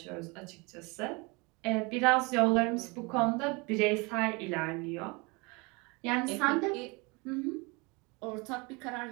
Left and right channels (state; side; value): quieter; left; 27.9 dB